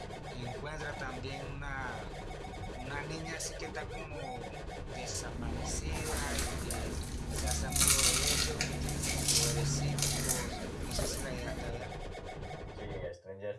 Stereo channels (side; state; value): both; identical; correlation 1.00